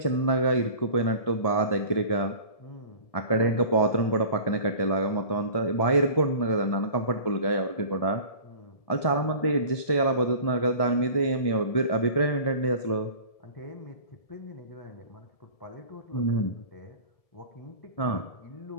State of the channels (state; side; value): late; right; 1.7 ms